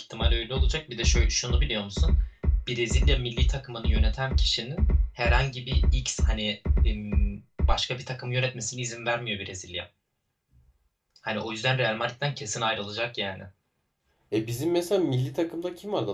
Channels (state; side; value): identical; both; correlation 1.00